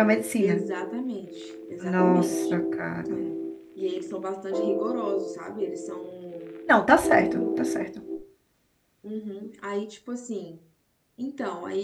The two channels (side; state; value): both; identical; correlation 1.00